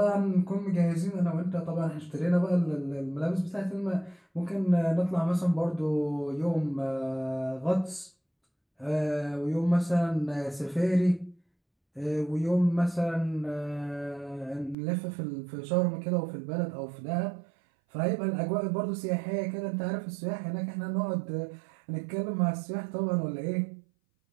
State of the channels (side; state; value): left; drops out; at 14.8 s